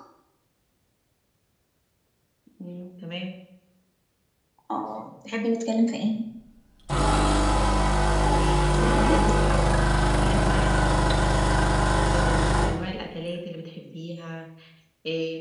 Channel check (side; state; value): both; identical; correlation 1.00